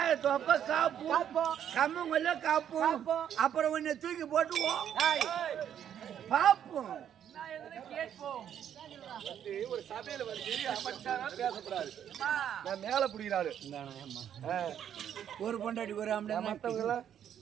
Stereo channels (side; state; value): left; quieter; 9.6 dB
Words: தொப்ப காப்போம் கம்மங்கொல்ல காப்போம் அப்புறம் உன்னை தூக்கி போட்டுவோம் பாப்போம் ஒரு சபையில வந்து அமைச்சாரா பேசக்கூடாது. நான் மேல புடிக்கிறாரு ஒரு பொண்டாடி ஒரு மத்தவங்க